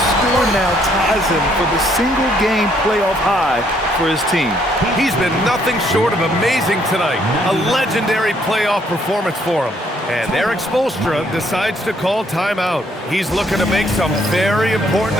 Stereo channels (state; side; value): normal; both; correlation 0.68